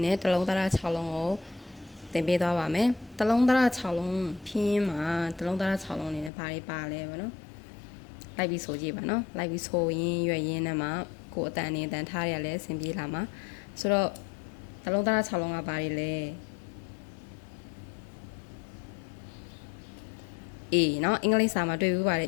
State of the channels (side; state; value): right; drops out; at 6.3 s